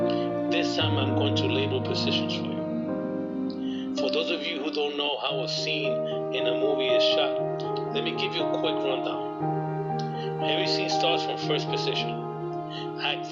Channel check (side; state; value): both; identical; correlation 1.00